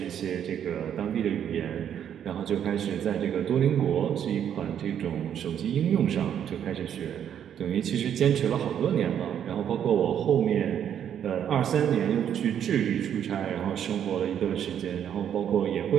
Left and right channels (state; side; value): quieter; left; 9.3 dB